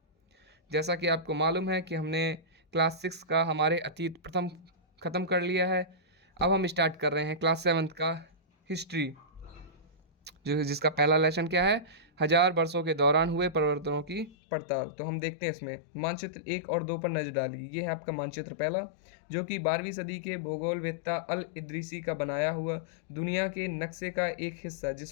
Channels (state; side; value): drops out; right; at 14.3 s